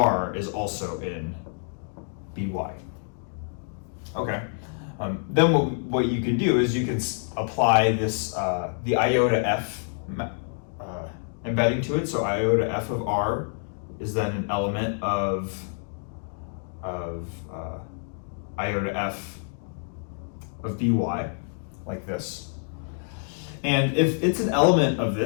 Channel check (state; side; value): silent; right; 60 dB below the other